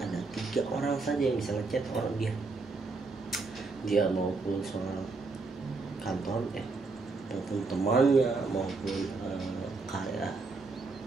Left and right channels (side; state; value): left; quieter; 3.9 dB